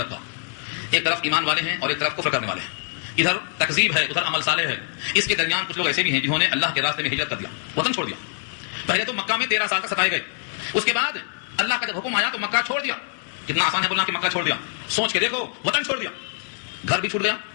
کا۔ ایک طرف ایمان والے ہیں اور ایک طرف کفر کرنے والے ہیں، ادھر تکذیب ہے ادھر عمل صالح ہے۔ اس کے درمیان کچھ لوگ ایسے بھی ہیں جنہوں نے اللہ کے راستے میں ہجرت کر دیا، وطن چھوڑ دیا۔ پہلے تو مکہ میں 13 سال تک ستائے گئے، اس کے بعد اللہ کا جب حکم آیا تو مکہ چھوڑ دیا۔ کتنا آسان ہے بولنا کہ مکہ چھوڑ دیا، سوچ کے دیکھو، وطن چھوڑ دیا، گھر بھی چھوٹ گیا،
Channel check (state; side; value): silent; right; digital silence